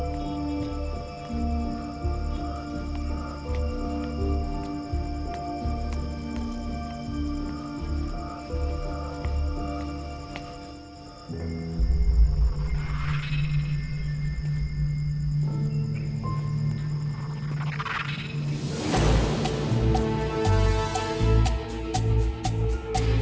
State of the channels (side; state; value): both; identical; correlation 1.00